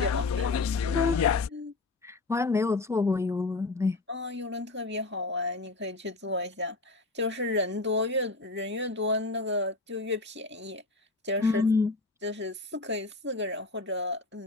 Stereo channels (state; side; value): quieter; right; 3.4 dB